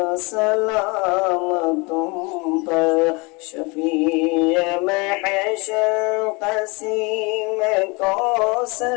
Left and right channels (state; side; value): quieter; right; 28.1 dB